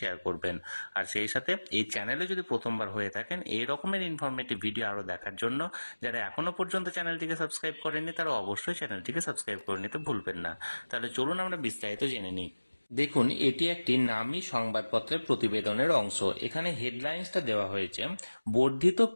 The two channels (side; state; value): both; inverted; correlation -1.00